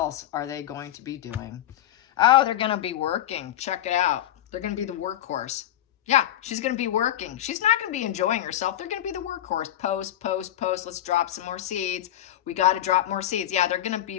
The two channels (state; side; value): quieter; right; 12.3 dB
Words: are they going to be doing? Oh, they're going to be working. Check it out. They're going to be the workhorse. Yeah, she's going to be working. She's not going to be enjoying herself. They're going to be the workhorse. Post, post, post. Let's drop some more seeds. We got to drop more seeds. Yeah, they're going to